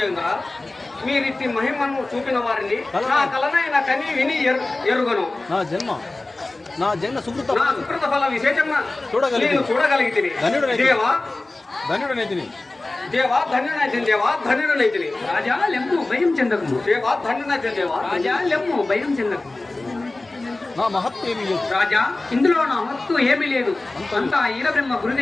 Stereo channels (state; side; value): quieter; right; 3.0 dB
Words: మీరిట్టి మహిమను చూపిన వారిని నా కలనైన కని విని ఎరుగను నా జన్మ సుకృత నా సుకృత ఫల విశేషంగా చూడగలిగి చూడగలిగితిని దేవా ధన్యుడనైతిని దేవా ధన్యుడనైతిని దేవా ధన్యుడనైతిని రాజా లెమ్ము భయం చెందకము. దేవా ధన్యుడనైతిని దేవా రాజా లెమ్ము భయం చెందకము. నా మహత్తు ఏమీ లేదు. రాజా ఇందులో నా మత్తు ఏమీ లేదు. అంతా ఈరబ్రహ్మ